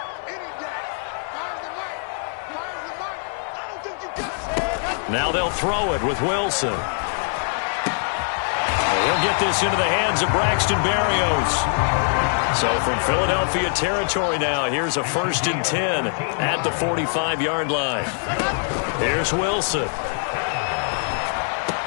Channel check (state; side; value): silent; right; 58 dB below the other